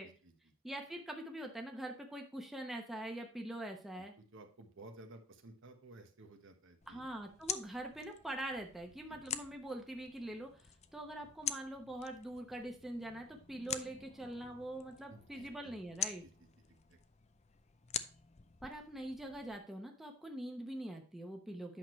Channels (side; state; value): both; normal; correlation 0.58